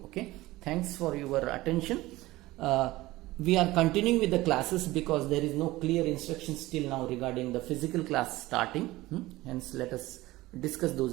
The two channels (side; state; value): left; quieter; 18.5 dB